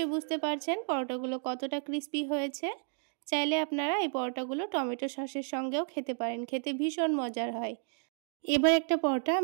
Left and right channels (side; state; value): left; silent; 55 dB below the other